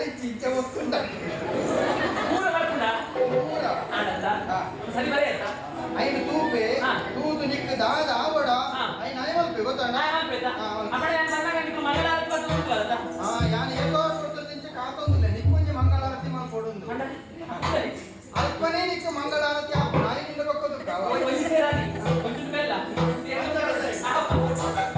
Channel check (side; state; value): both; identical; correlation 1.00